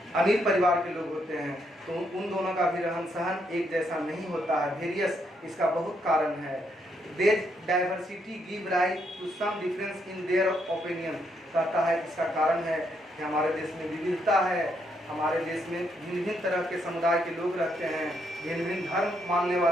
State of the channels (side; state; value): both; normal; correlation 0.76